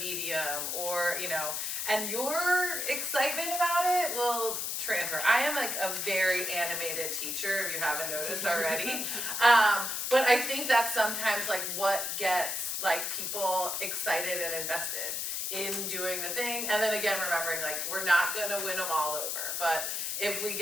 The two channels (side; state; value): left; noise; hiss, 2 dB below the sound